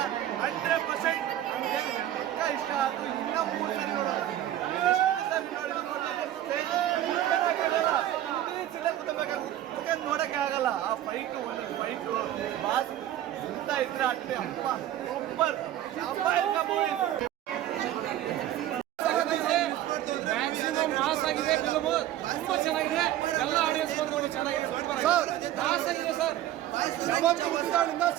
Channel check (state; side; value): quieter; left; 12.7 dB